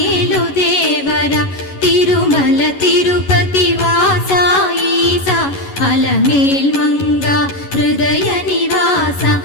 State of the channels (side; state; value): right; late; 11 ms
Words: దేవర తిరుమల తిరుపతి వాస ఈస అలమేల్ మంగ హృదయ నివాస